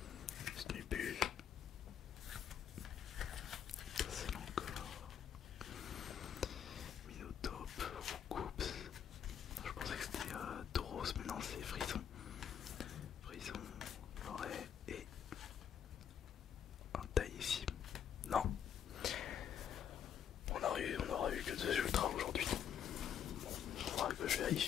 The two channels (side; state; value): right; quieter; 8.7 dB